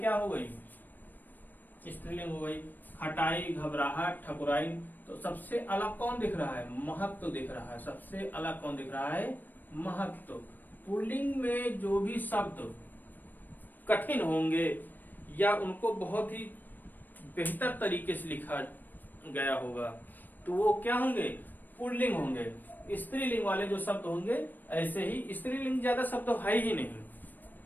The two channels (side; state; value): right; late; 0.089 ms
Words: हो गई, स्त्रीलिंग हो गई। खटाई, घबराहट, ठकुराई, तो सबसे अलग कौन दिख रहा है, महत्व दिख रहा है। सबसे अलग कौन दिख रहा है, महत्व। पुल्लिंग में जो भी शब्द कठिन होंगे या उनको बहुत ही बेहतर तरीके से लिखा गया होगा तो वो क्या होंगे, पुल्लिंग होंगे। स्त्रीलिंग वाले जो शब्द होंगे ऐसे ही, स्त्रीलिंग ज्यादा शब्द है ही